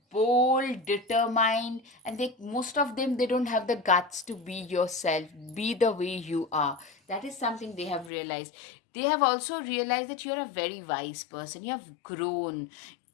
bold, determined, and they, most of them, they don't have the guts to be yourself, be the way you are. That is something they have realized. They have also realized that you're a very wise person. You have grown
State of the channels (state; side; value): drops out; right; at 8.1 s